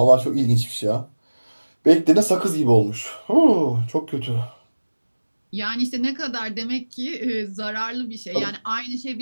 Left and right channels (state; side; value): inverted; both; correlation -1.00